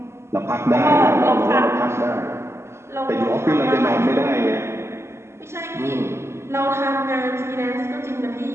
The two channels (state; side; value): late; left; 0.13 ms